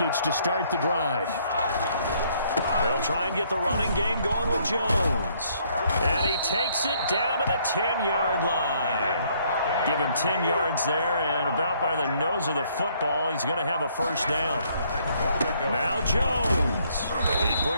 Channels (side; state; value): both; inverted; correlation -0.66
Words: to start the drive. They'll try and get the running game going with Jones. And he takes it down to the 10-yard line. Give him 10 yards there, and about by the nose of the football, he's going to have a 1st down. Now Jones. He